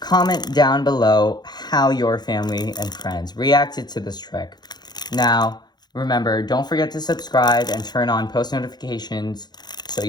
comment down below how your family and friends reacted to this trick. Now, remember, don't forget to subscribe and turn on post notifications so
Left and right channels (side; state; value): right; late; 0.20 ms